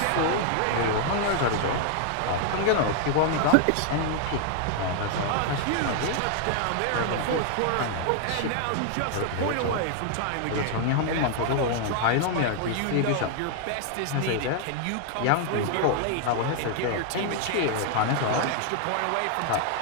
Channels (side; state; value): both; different; correlation 0.00